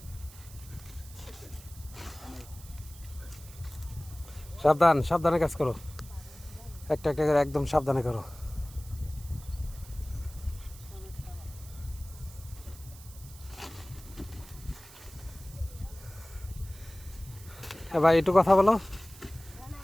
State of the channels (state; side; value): noise; right; hiss, 19 dB below the sound